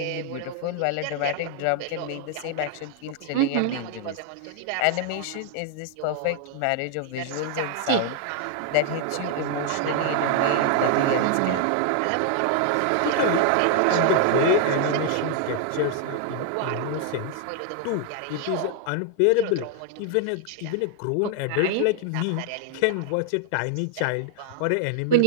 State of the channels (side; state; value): both; different; correlation 0.00